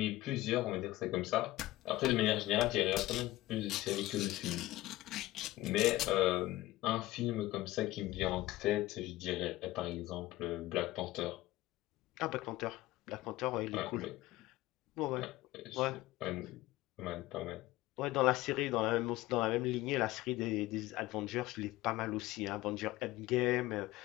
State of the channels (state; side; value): quieter; right; 17.4 dB